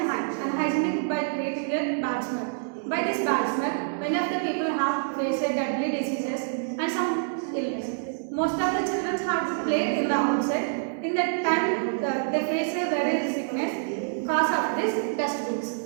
unhygienic by creating a bad smell. By this bad smell, many of the people have faced deadly diseases and some illness. Most of the children have to play in the outside. In that time, they face a very sickness cause of this dustbins.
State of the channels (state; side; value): silent; left; digital silence